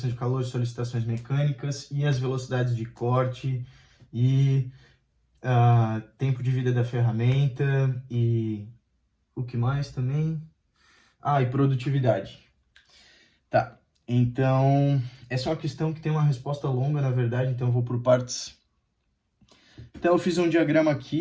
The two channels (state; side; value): identical; both; correlation 1.00